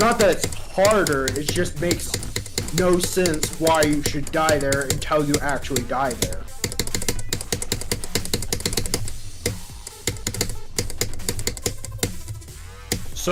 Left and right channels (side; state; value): both; identical; correlation 1.00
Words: that it's harder, it just makes no sense why you should die there until you actually die there.